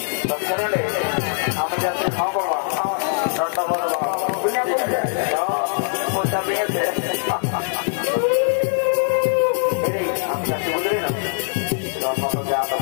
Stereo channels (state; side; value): silent; right; digital silence